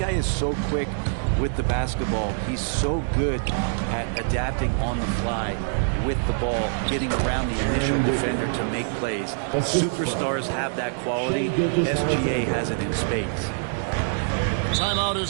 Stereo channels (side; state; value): left; silent; digital silence